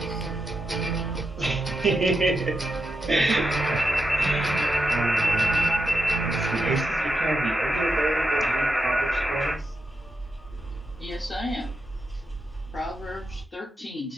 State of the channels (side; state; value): both; normal; correlation 0.86